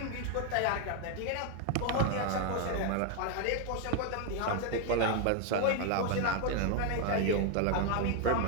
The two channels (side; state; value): both; different; correlation 0.01